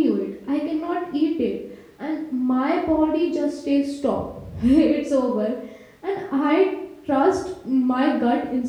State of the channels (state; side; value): identical; both; correlation 1.00